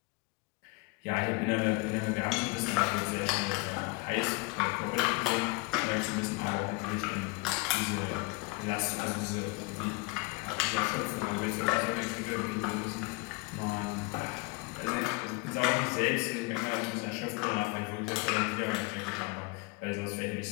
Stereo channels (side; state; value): right; quieter; 26.3 dB